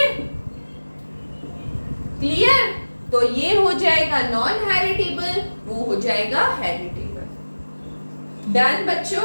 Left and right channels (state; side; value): inverted; both; correlation -1.00